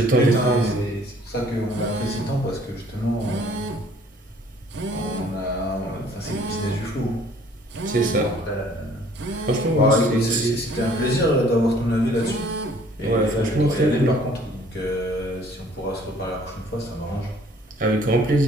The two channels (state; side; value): normal; both; correlation 0.57